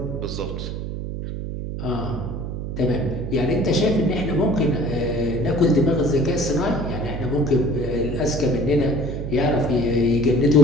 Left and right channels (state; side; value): noise; right; hum, 5 dB below the sound